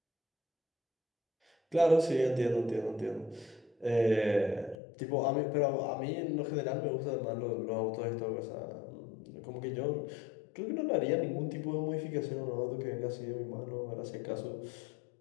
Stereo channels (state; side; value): drops out; right; at 4.8 s